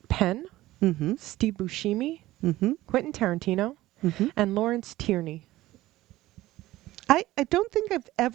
Penn, Mm-hmm. Steve Buscemi, Mm-hmm. Quentin Tarantino, Mm-hmm. and Lawrence Tierney. I don't think I've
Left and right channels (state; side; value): quieter; left; 16.6 dB